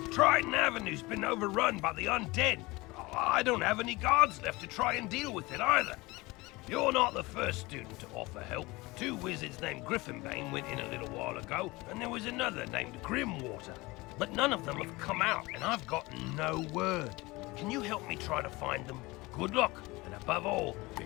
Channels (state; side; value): quieter; right; 22.3 dB